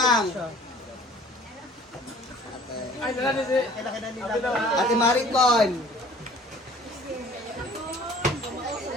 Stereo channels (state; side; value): normal; both; correlation 0.51